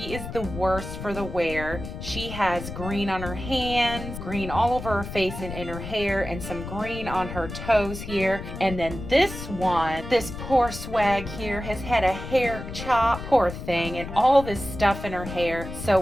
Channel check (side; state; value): left; noise; rumble, 9 dB below the sound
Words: is the worst for the wear. She has green on her hands, green all over her face and in her hair, and some green on her toes here. And then this one, this poor swag here, has had a hair chop, poor thing, and all this stuff in her hair. So